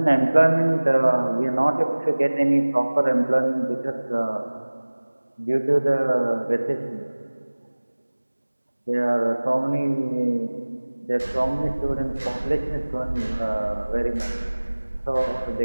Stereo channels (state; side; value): inverted; both; correlation -1.00